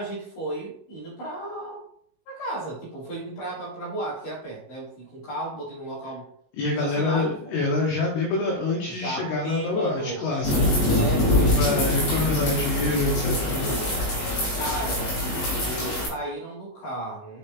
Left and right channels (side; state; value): right; late; 19 ms